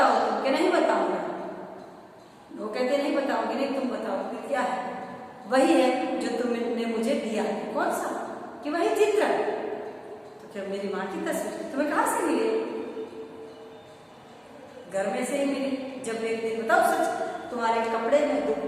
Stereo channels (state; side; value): identical; both; correlation 1.00